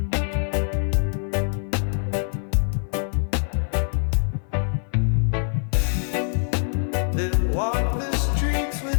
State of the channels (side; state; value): right; silent; 55 dB below the other